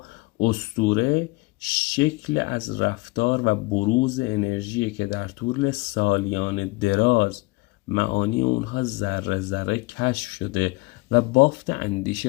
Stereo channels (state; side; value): quieter; right; 24.5 dB